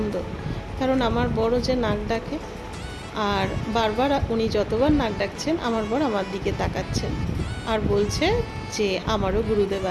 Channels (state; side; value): identical; both; correlation 1.00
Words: কারণ আমার বড় যে নাক ডাকে, আর বারবার উনি যতবার নাক ডাকছেন আমার বর আমার দিকে তাকাচ্ছেন আর বলছে যে আমারও গুরুদেব